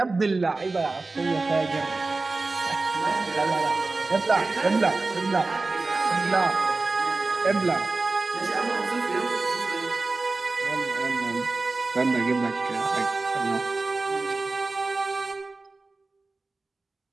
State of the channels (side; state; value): left; quieter; 3.5 dB